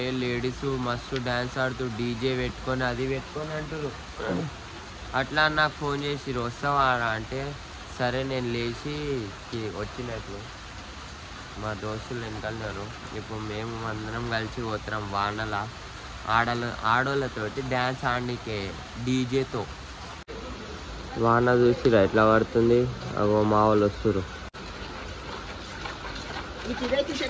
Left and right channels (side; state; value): both; identical; correlation 1.00